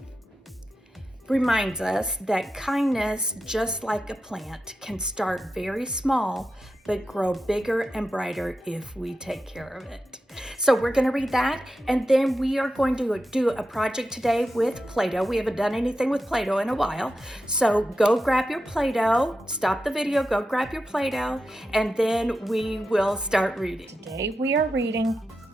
reminds us that kindness, just like a plant, can start very small but grow bigger and brighter if we take care of it. So we're going to read that, and then we are going to do a project today with Play-Doh. We haven't done anything with Play-Doh in a while. So go grab your Play-Doh, stop the video, go grab your Play-Doh, and then we will start reading. Today we are reading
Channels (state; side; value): normal; both; correlation 0.90